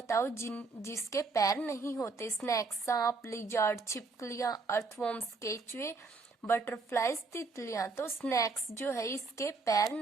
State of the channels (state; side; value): quieter; left; 4.0 dB